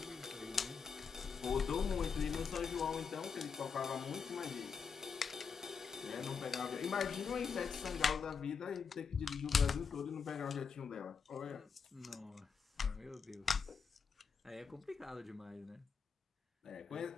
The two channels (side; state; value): right; quieter; 5.9 dB